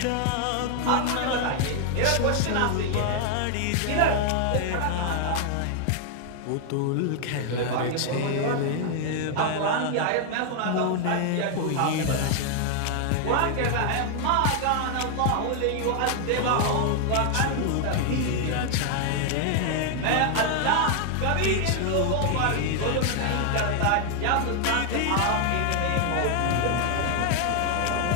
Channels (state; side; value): different; both; correlation 0.00